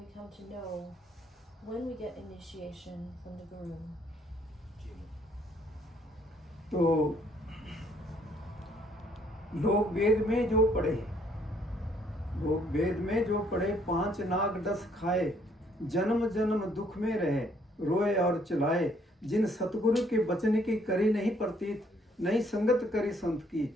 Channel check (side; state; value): both; normal; correlation 0.66